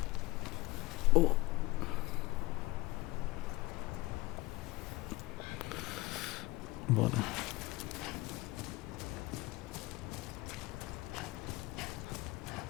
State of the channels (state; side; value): quieter; right; 20.5 dB